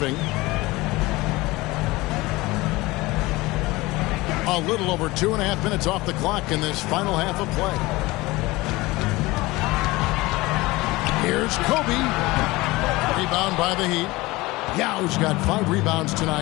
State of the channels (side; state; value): right; quieter; 20.9 dB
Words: A little over 2.5 minutes off the clock in this final half of play. Here's Kobe. Rebound by the Heat. Yao's got 5 rebounds